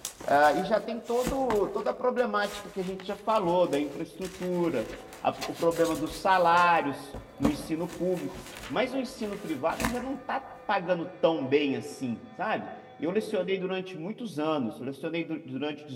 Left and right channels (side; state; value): both; identical; correlation 1.00